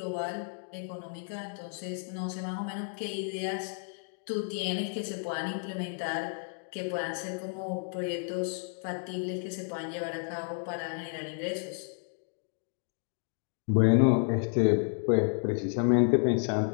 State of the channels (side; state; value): right; silent; 57 dB below the other